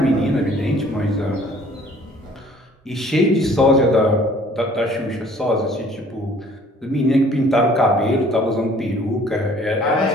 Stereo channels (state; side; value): normal; both; correlation 0.55